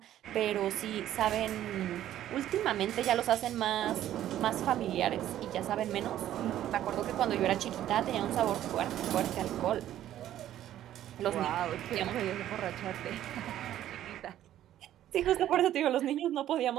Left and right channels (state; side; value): quieter; left; 12.3 dB